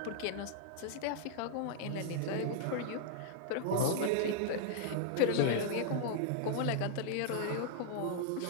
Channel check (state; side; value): different; both; correlation -0.01